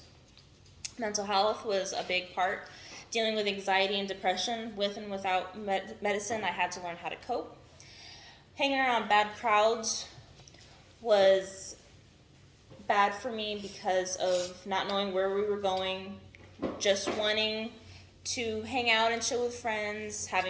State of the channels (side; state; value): both; identical; correlation 1.00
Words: Mental health was a big part. Dealing with anxiety and depression, with and without medicine, I had to learn how to cope. Hanging around bad crowds was bad for me because of not knowing where we were going, just wanting to hang out and chill with friends,